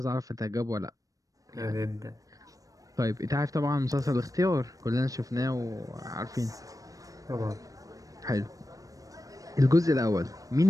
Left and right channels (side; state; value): left; late; 0.16 ms